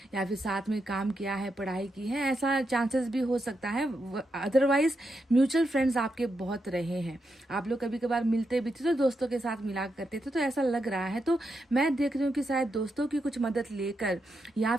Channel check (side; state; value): both; normal; correlation 0.84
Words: या फिर साथ में काम किया है, पढ़ाई की है, ऐसा चांसेस भी हो सकता है। अदरवाइज म्यूचुअल फ्रेंड्स आपके बहुत रहे हैं। आप लोग कभी कभार मिलते भी थे तो दोस्तों के साथ मिला करते थे, तो ऐसा लग रहा है। तो मैं देख रही हूँ कि शायद दोस्तों की कुछ मदद लेकर या